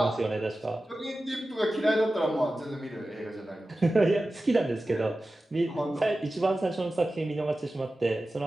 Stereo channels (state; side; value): normal; both; correlation 0.95